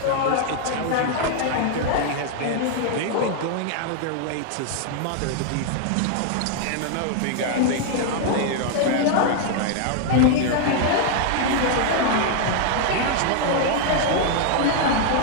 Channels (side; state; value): both; different; correlation 0.00